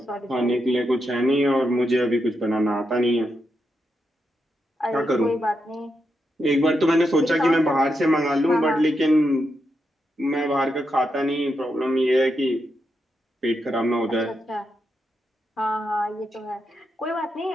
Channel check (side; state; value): both; normal; correlation 0.84